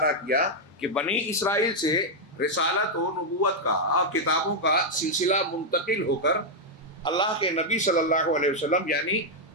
کیا کہ بنی اسرائیل سے رسالت و نبوت کا اور کتابوں کا سلسلہ منتقل ہو کر اللہ کے نبی صلی اللہ علیہ وسلم یعنی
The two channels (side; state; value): both; normal; correlation -0.02